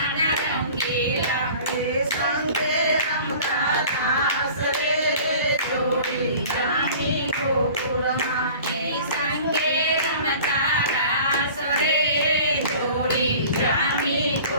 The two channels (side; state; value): both; inverted; correlation -0.44